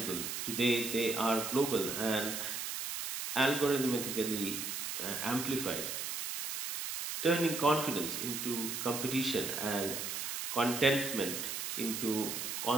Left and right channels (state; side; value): noise; right; hiss, 4 dB below the sound